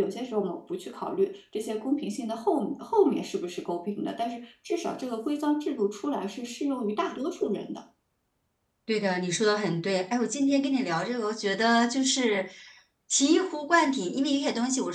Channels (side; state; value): both; identical; correlation 1.00